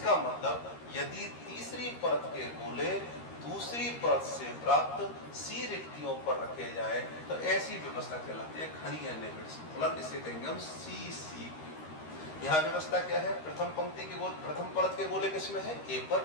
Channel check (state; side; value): late; right; 13 ms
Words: मतलब यदि तीसरी परत के गोले दूसरी परत से प्राप्त सी रिक्तियों पर रखे जाए तो ऐसी व्यवस्था कहलाती है घनीय निबिड़ संकुलन, इसे कहेंगे हम CCP। यहाँ व्यवस्था क्या है, प्रथम पंक्ति के गोले, प्रथम परत के गोले किसमें है, ए पर,